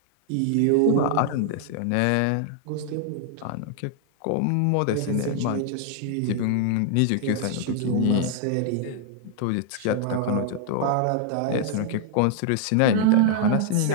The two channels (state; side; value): different; both; correlation -0.01